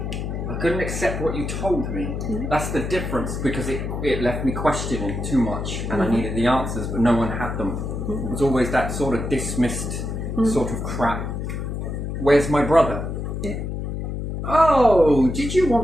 I couldn't accept what you told me. That's the difference, because it left me questioning too much and I needed the answers, but no one had them. It was always that sort of dismissed sort of crap. Where's my brother? Yeah. Oh, did you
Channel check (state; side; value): noise; left; hum, 4 dB below the sound